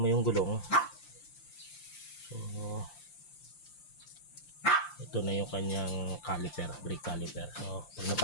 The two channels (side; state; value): right; late; 5.8 ms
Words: yung gulong, so ito na yung kanyang caliper, brake caliper. So pag